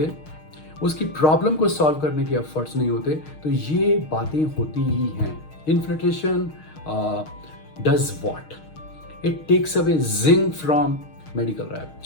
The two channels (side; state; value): right; late; 6.5 ms